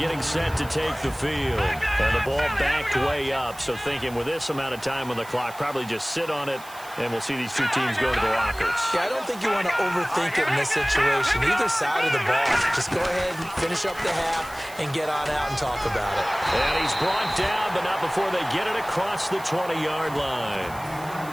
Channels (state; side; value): noise; right; hiss, 19 dB below the sound